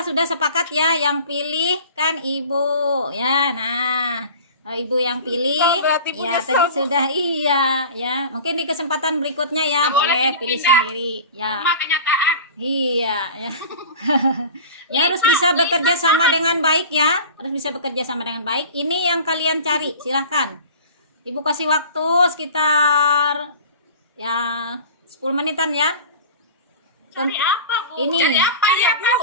sudah sepakat ya, yang pilih kan Ibu ya. Nah, Ibu yang pilih Berarti Bu ya, nyesel, tadi Bu. sudah iya ya. Mungkin di kesempatan berikutnya ya Nggak boleh boleh pilih pindah-pindah. sendiri ya. Cuma kenyataan. Iya ya. Ya, harus bisa bekerja sama dengan baik ya. Harus bisa bekerja sama dengan baik. Ini yang kalian cari, silahkan. Ibu kasih waktu sekitar ya 10 menitan ya. Cari apa, Bu? Ini Jadi apa ya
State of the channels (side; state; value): both; inverted; correlation -0.38